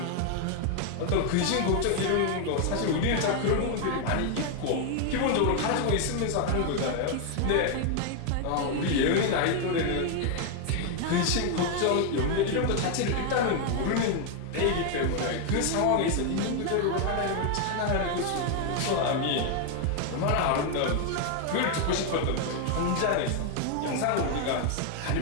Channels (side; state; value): both; different; correlation 0.01